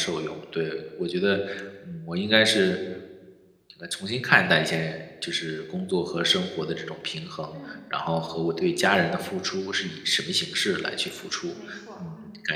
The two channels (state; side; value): identical; both; correlation 1.00